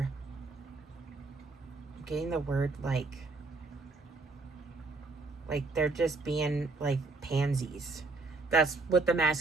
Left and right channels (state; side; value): quieter; left; 3.6 dB